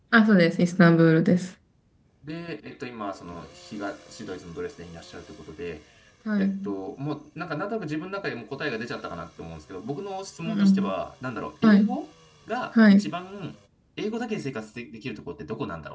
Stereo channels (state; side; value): identical; both; correlation 1.00